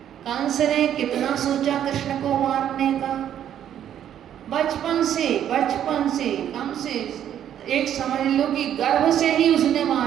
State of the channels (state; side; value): quieter; left; 10.2 dB